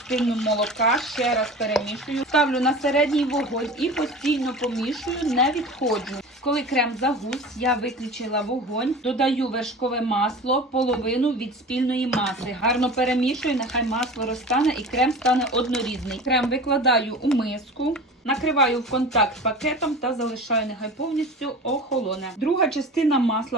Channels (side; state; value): both; normal; correlation 0.36